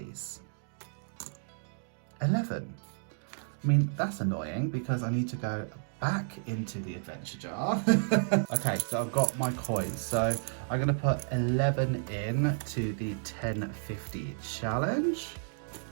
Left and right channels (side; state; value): left; silent; digital silence